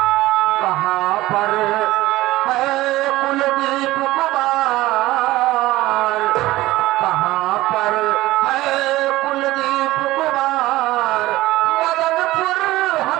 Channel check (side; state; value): left; quieter; 17.5 dB